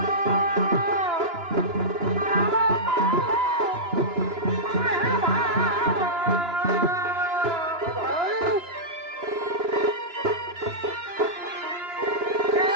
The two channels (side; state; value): left; late; 2.9 ms